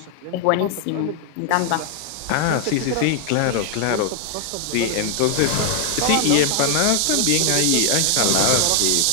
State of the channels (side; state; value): both; different; correlation 0.00